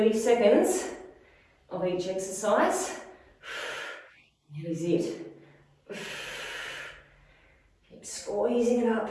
seconds of each exercise. That is it. Keep squeezing it up.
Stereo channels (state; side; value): identical; both; correlation 1.00